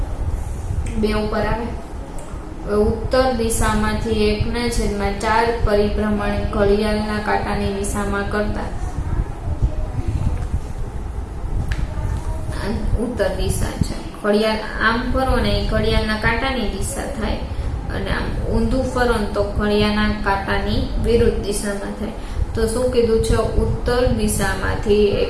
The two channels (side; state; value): both; identical; correlation 1.00